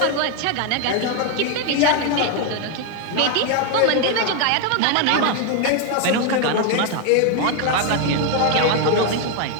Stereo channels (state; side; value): different; both; correlation 0.01